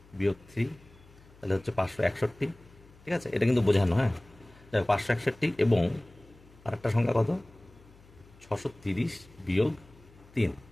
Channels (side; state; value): left; noise; hum, 25 dB below the sound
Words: বিয়োগ 3, তাহলে হচ্ছে 561, ঠিক আছে? এটা কিন্তু বোঝানো, হ্যাঁ, 561 এবং আরেকটা সংখ্যা কত? 630 বিয়োগ 3,